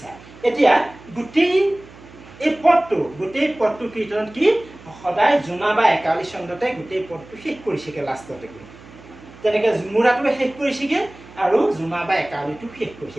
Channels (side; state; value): right; noise; hum, 21 dB below the sound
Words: এতিয়া গোটেই পদটো কীৰ্তনত কি সদায় জোনা বা একাৱলী ছন্দতে গোটেই পদটো শেষ কৰিছেগৈ লাষ্টতে গৈ। তেনেকৈ ঝুমুৰাটোৱে শেষ কৰিছেগৈ, আৰু জোনা বা একাৱলীটো শেষ